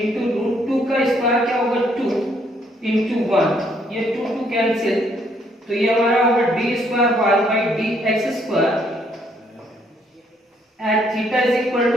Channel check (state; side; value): normal; both; correlation 0.69